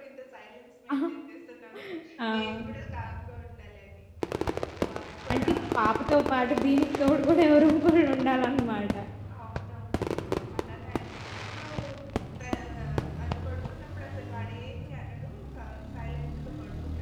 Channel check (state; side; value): identical; both; correlation 1.00